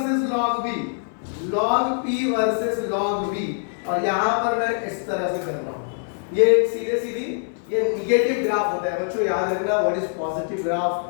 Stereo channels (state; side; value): silent; right; 59 dB below the other